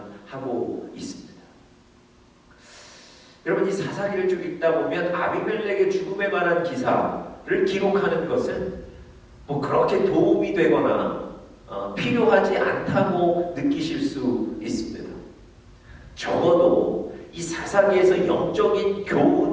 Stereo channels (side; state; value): both; identical; correlation 1.00